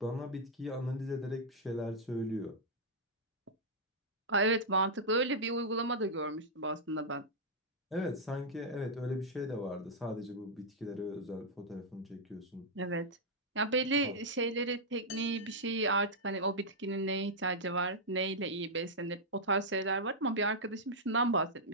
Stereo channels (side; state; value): both; normal; correlation -0.06